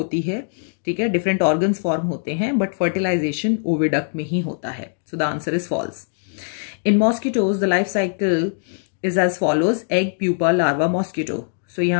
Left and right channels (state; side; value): silent; right; digital silence